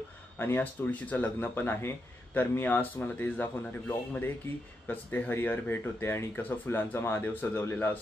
आणि आज तुळशीचं लग्न पण आहे। तर मी आज तुम्हाला तेच दाखवणार आहे ब्लॉगमध्ये की कसं ते हरिहर भेट होते आणि कसं फुलांचा महादेव सजवलेला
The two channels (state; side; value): normal; both; correlation 0.84